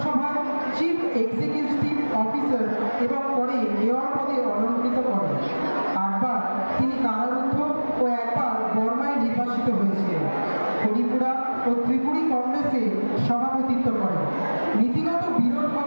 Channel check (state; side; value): inverted; both; correlation -1.00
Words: চিফ এক্সিকিউটিভ অফিসার এবং পরে মেয়র পদে অলঙ্কৃত করেন। 8বার তিনি কারারুদ্ধ ও একবার বর্মায় নির্বাসিত হয়েছিলেন। হরিপুরা ও ত্রিপুরী কংগ্রেসে সভাপতিত্ব করেন। নীতিগত বিরোধ